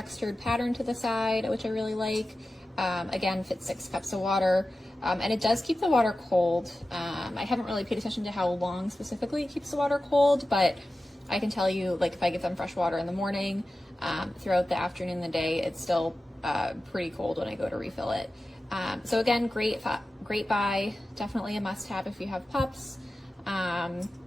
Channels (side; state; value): both; normal; correlation 0.94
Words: pattern to the side, which I really like. Again, fits 6 cups of water. And it does keep the water cold. I haven't really paid attention to how long specifically it keeps the water cold, but I can tell you, like, if I give them fresh water in the morning, throughout the afternoon and the day, it's still pretty cold when I go to refill it. So again, great buy. Definitely a must-have if you have pups.